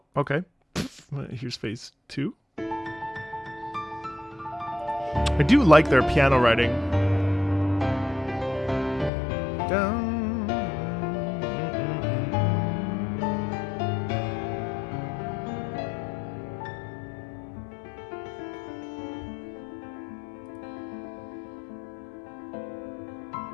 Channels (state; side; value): drops out; right; at 9.1 s